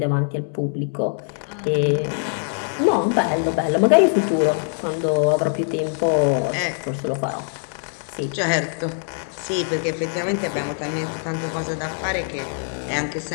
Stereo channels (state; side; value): silent; right; 64 dB below the other